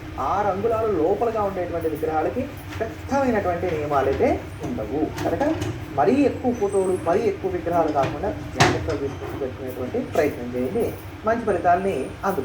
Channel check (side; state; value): both; identical; correlation 1.00